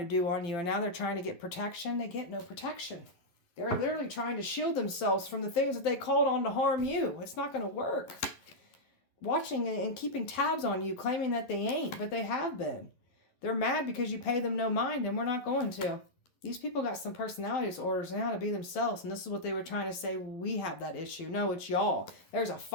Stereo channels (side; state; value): right; late; 12 ms